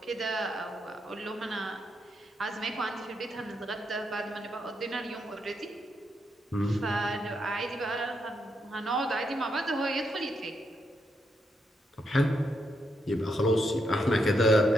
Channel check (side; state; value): both; normal; correlation 0.80